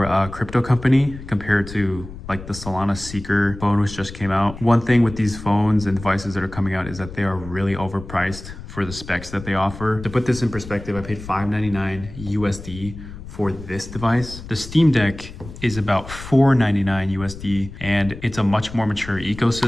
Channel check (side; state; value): left; noise; rumble, 13 dB below the sound